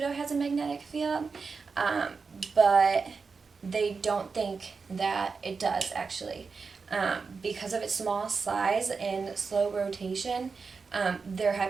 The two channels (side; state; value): left; quieter; 4.9 dB